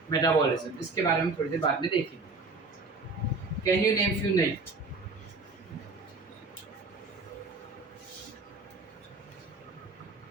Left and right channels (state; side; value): quieter; left; 3.6 dB